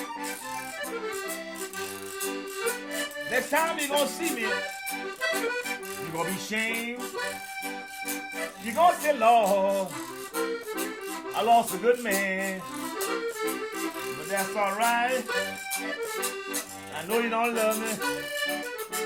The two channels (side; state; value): both; identical; correlation 1.00